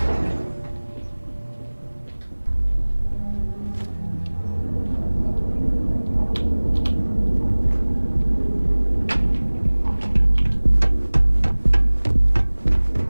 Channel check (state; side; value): inverted; both; correlation -1.00